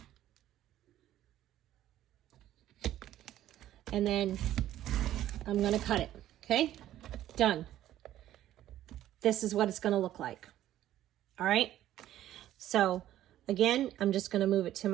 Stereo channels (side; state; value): left; quieter; 12.9 dB